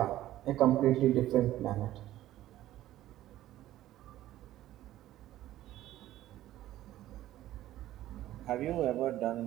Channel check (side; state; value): left; quieter; 14.2 dB